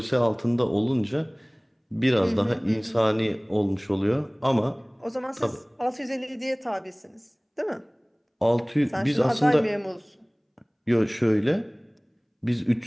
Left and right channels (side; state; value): both; identical; correlation 1.00